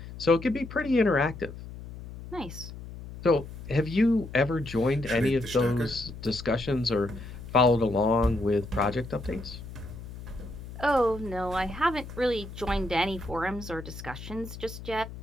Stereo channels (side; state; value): left; noise; hum, 12 dB below the sound